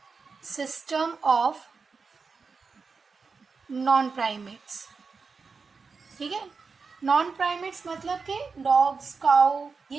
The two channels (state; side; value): quieter; left; 4.9 dB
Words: system of non primates, ठीक है। नॉन प्राइमेट्स मतलब कि डॉग्स, काउ,